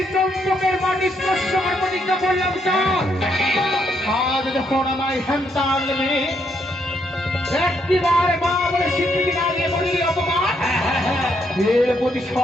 চম্পকের মাটি স্পর্শ করে প্রতিজ্ঞা করলাম চাঁদ আজ যখন আমায় সন্তান মেয়ে একটিবার মা বলে স্বীকৃতি না দিয়ে বললি অপমান এর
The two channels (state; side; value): normal; both; correlation 0.75